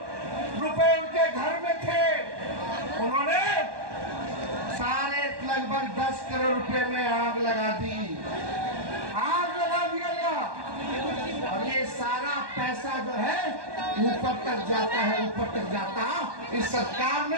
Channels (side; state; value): left; late; 1.2 ms